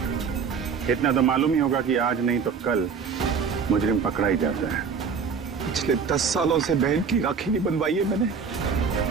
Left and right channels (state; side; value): quieter; left; 5.9 dB